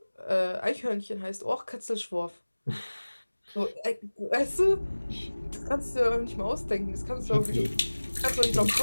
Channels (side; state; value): both; inverted; correlation -1.00